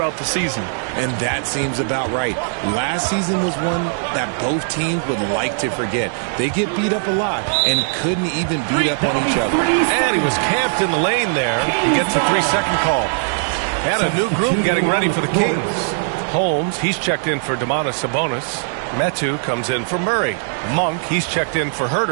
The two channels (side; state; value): left; silent; digital silence